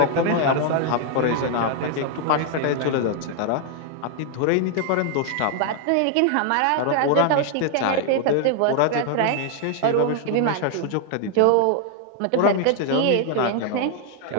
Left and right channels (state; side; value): different; both; correlation 0.00